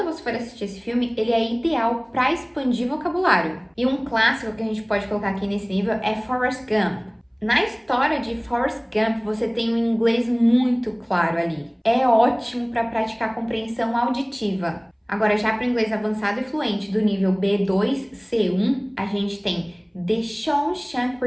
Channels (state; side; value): identical; both; correlation 1.00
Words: você for assistir esse filme, ele é ideal para expandir vocabulário. E um clássico que a gente pode colocar aqui nesse nível é Forrest Gump. Na história de Forrest Gump, você tem um inglês muito claro ali. É ótimo para praticar compreensão auditiva. Agora, já para o inglês avançado e fluente do nível B2, C1, a gente tem The Shawshank